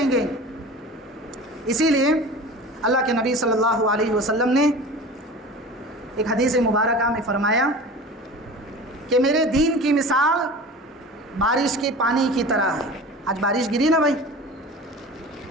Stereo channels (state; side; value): normal; both; correlation 0.37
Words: گے۔ اسی لیے اللہ کے نبی صلی اللہ علیہ وسلم نے ایک حدیث مبارکہ میں فرمایا کہ میرے دین کی مثال بارش کے پانی کی طرح ہے۔ آج بارش گری نا بھائی،